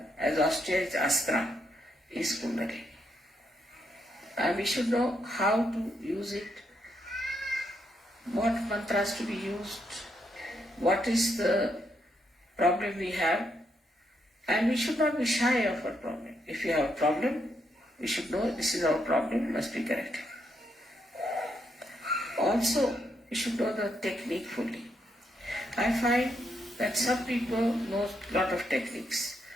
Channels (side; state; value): both; normal; correlation 0.78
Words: as austere as Astra is Kundalini. And we should know how to use it, what mantras to be used, what is the problem we have, and we should not be shy of our problem. If you have a problem, we should know this is our problem, must be corrected. Also, we should know the technique fully. I find that some people know a lot of techniques